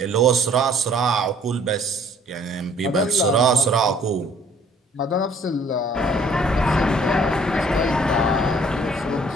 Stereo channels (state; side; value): normal; both; correlation 0.58